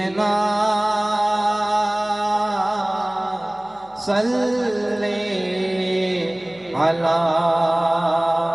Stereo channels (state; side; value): noise; left; hum, 28 dB below the sound